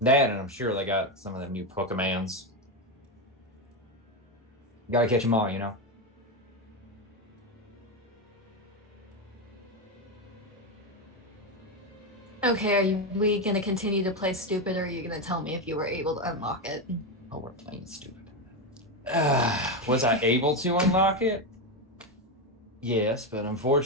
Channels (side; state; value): both; normal; correlation 0.10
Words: that, and I'm sure they got some of them new Pokemans. Gotta catch them all, Okay, are we gonna continue to play stupid, or are you gonna tell me if you were able to unlock it? Oh, we're playing stupid. Was I able to unlock it? Yes, but